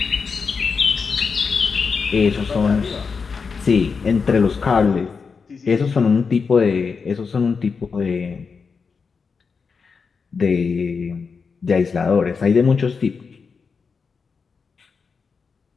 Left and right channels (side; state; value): right; quieter; 5.3 dB